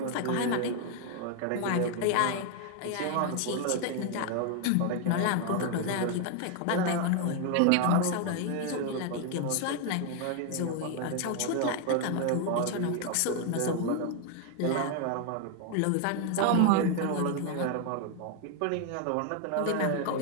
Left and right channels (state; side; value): different; both; correlation 0.00